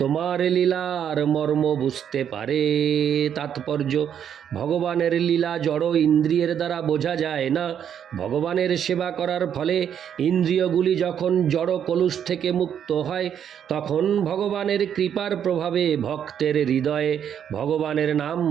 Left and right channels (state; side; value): quieter; left; 8.9 dB